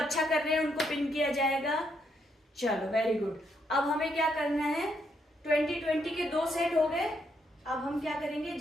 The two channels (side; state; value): both; normal; correlation 0.76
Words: कर रहे हैं उनको पिन किया जाएगा। चलो, वेरी गुड। अब हमें क्या करना है, 20 के 2 सेट हो गए। अब हम क्या करेंगे,